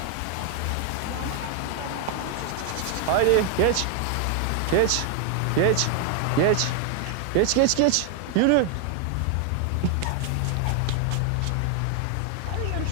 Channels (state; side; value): different; both; correlation 0.00